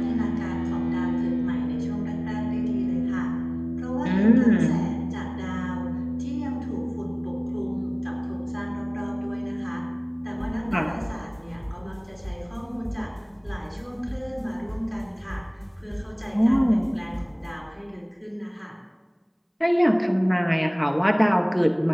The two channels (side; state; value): both; identical; correlation 1.00